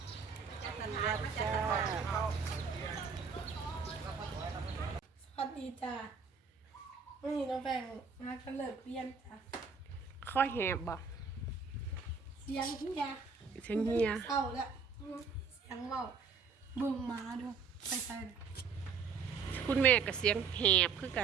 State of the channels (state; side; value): quieter; left; 5.6 dB